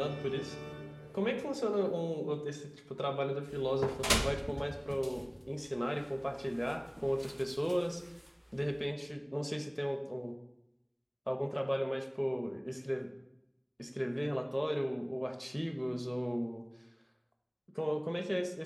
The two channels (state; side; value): identical; both; correlation 1.00